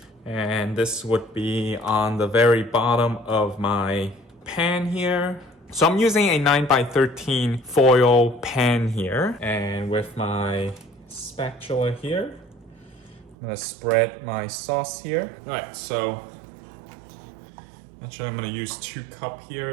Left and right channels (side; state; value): left; drops out; at 13.4 s